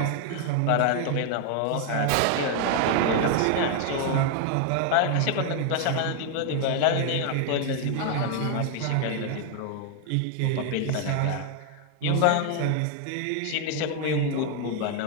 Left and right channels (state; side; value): different; both; correlation 0.00